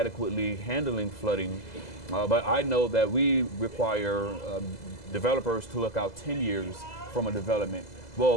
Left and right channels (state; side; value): late; right; 2.0 ms